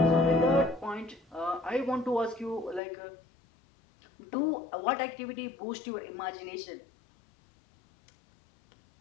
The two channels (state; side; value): drops out; right; at 2.8 s